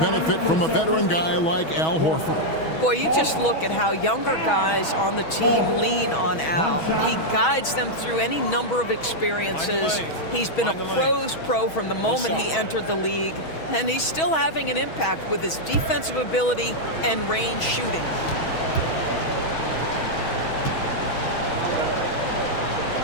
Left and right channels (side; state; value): right; late; 6.2 ms